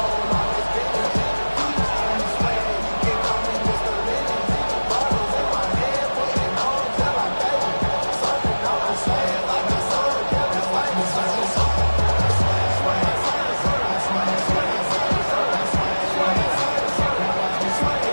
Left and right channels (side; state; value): both; inverted; correlation -1.00